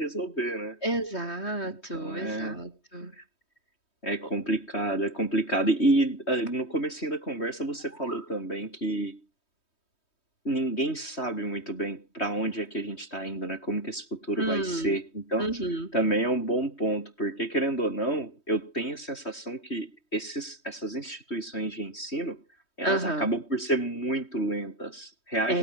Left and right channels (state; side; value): late; right; 3.2 ms